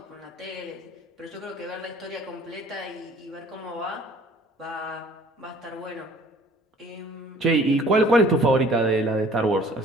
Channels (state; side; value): normal; both; correlation 0.53